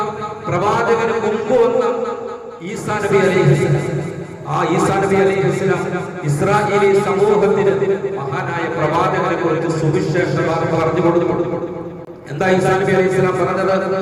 പ്രവാചകന് മുമ്പ് വന്ന ഈസാ നബി അലൈഹിസ്സലാം, ആ ഈസാ നബി അലൈഹിസ്സലാം ഇസ്രായേലി സമൂഹത്തിന് മഹാനായ പ്രവാചകനെ കുറിച്ച് സുവിശേഷ വാർത്ത പറഞ്ഞു കൊടുത്തു. എന്താ ഈസാ നബി അലൈഹിസ്സലാം പറഞ്ഞത്?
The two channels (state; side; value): identical; both; correlation 1.00